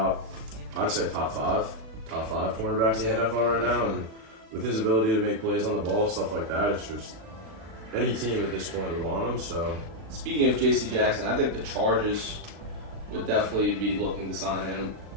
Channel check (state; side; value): late; left; 36 ms